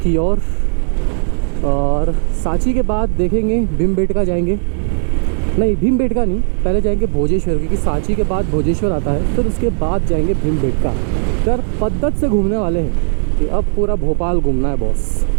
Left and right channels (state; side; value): silent; left; digital silence